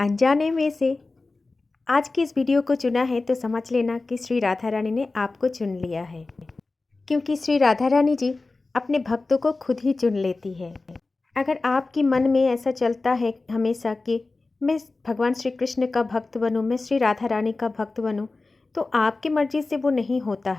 में से आज की इस वीडियो को चुना है तो समझ लेना कि श्री राधा रानी ने आपको चुन लिया है, क्योंकि श्री राधा रानी जी अपने भक्तों को खुद ही चुन लेती है। अगर आपके मन में ऐसा चलता है हमेशा कि मैं भगवान श्री कृष्ण का भक्त बनूं, मैं श्री राधा रानी का भक्त बनूं, तो आपकी मर्जी से वो नहीं होता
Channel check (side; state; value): right; quieter; 3.5 dB